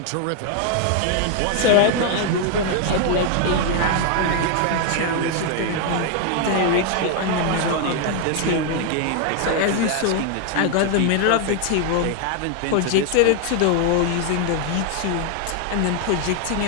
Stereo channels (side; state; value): both; different; correlation 0.00